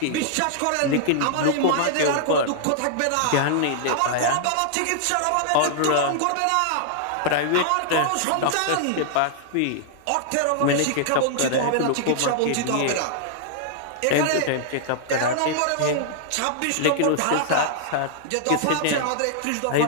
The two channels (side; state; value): both; different; correlation -0.01